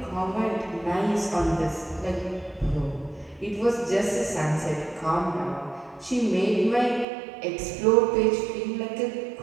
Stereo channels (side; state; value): left; drops out; at 7.1 s